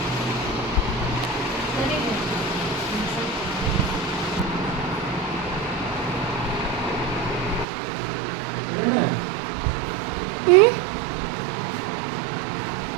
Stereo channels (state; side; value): drops out; left; at 7.7 s